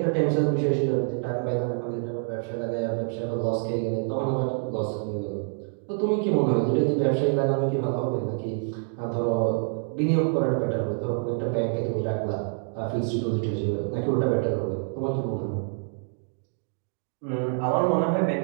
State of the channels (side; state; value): left; silent; 58 dB below the other